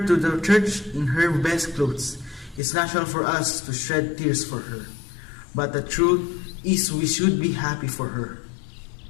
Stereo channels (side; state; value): right; drops out; at 2.6 s